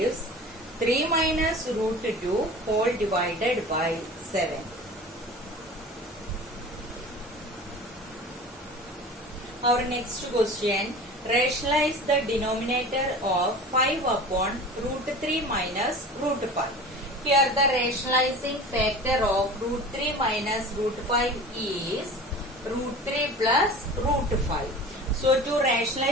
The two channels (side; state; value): both; normal; correlation 0.38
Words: 3 minus root 2 whole divided by 7. Our next question, rationalize the denominator of 5 upon root 3 minus root 5. Here the rationalizing factor of root 3 minus root 5 is root 3 plus root 5. So to